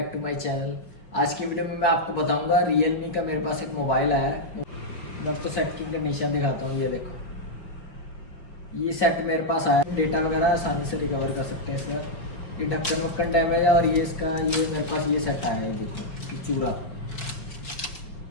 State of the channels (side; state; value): right; late; 4.4 ms